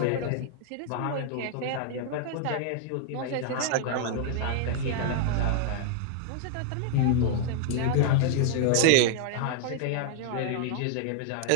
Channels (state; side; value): different; both; correlation 0.00